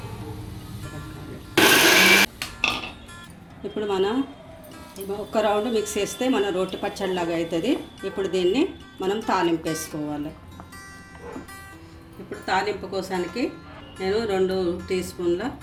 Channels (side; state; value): both; identical; correlation 1.00